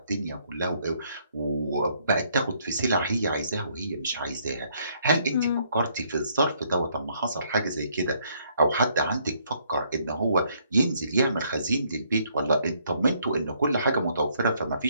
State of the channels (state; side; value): inverted; both; correlation -0.68